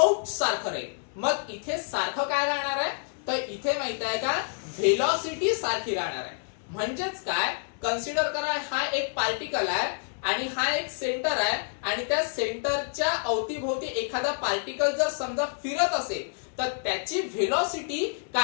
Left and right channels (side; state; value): right; silent; 59 dB below the other